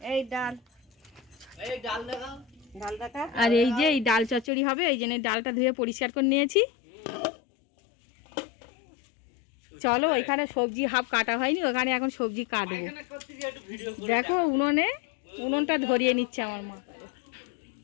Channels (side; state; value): right; drops out; at 4.5 s